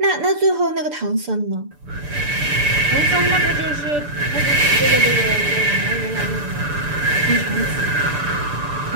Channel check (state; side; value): late; left; 6.8 ms